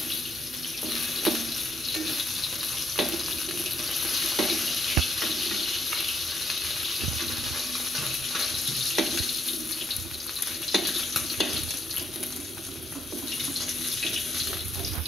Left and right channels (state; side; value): normal; both; correlation 0.77